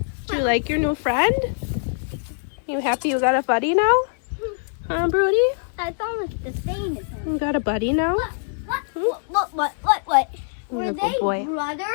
Do you like your new friend? You happy you got a buddy now? Huh, Brody? That's almost the same as him. You got a buddy now? What? Were You're a they good boy.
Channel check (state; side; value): silent; right; digital silence